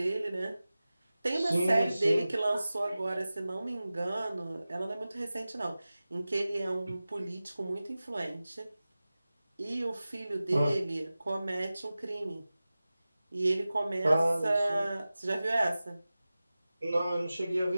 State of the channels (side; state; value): both; inverted; correlation -0.96